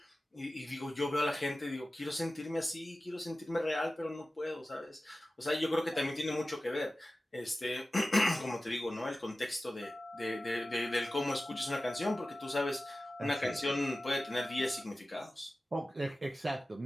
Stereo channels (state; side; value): normal; both; correlation 0.95